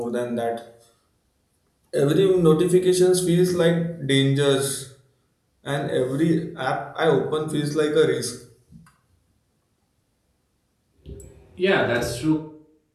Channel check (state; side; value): identical; both; correlation 1.00